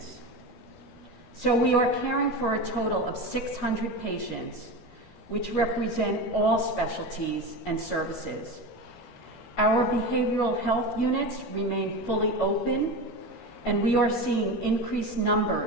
So we are caring for a total of 600 patients, which represent all specialties and services. Our behavioral health units remain fully open, and we are seeing increased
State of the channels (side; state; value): right; late; 12 ms